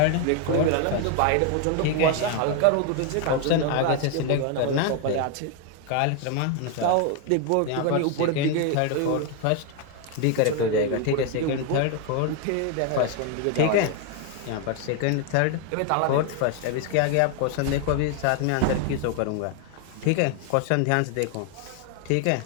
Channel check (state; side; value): different; both; correlation 0.01